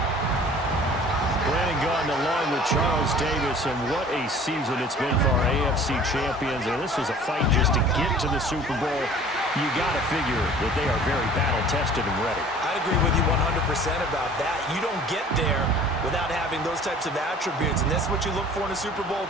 Brandon Gaudin along with Charles Davis, and what a season it's been for our AFC champions. And this was a fight just to get to the Super Bowl. You got to figure that they are very battle-tested and ready. I'd agree with you 100% about that. You don't get there without having those types of attributes, and that's what you look for in a Super Bowl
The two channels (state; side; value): normal; both; correlation 0.48